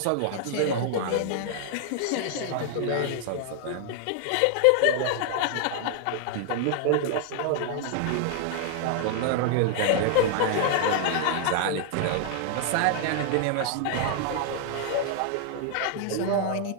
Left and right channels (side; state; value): both; different; correlation 0.00